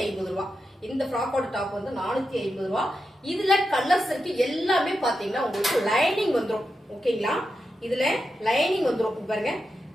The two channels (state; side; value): normal; both; correlation 0.88